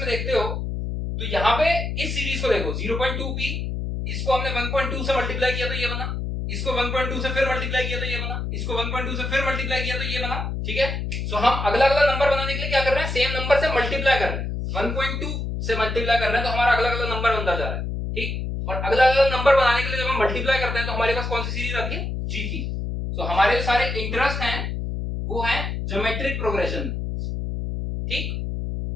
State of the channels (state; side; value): noise; left; hum, 3 dB below the sound